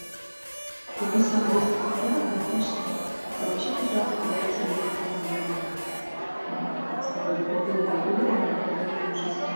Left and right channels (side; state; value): both; inverted; correlation -1.00